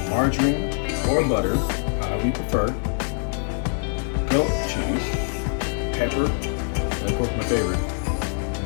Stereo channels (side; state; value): right; silent; 63 dB below the other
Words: margarine or butter, however you prefer. Goat cheese, pepper, and of course my favorite,